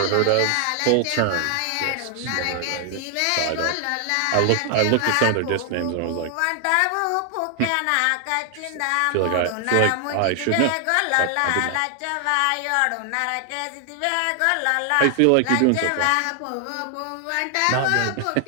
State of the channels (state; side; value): different; both; correlation 0.00